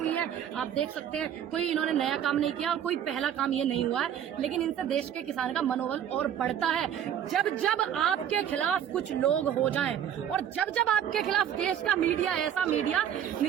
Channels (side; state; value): left; quieter; 9.7 dB